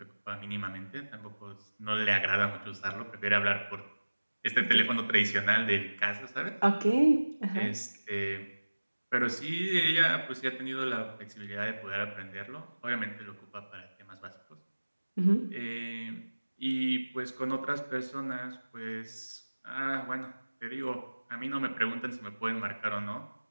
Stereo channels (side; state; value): both; inverted; correlation -1.00